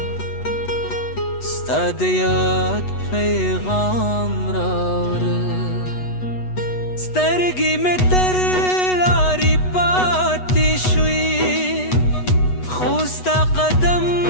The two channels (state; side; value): late; right; 8.1 ms